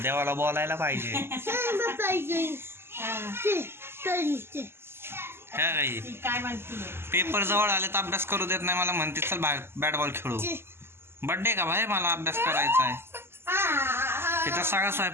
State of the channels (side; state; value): left; late; 0.12 ms